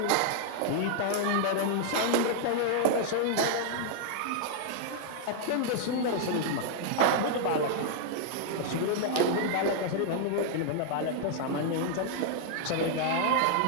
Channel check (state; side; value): different; both; correlation -0.01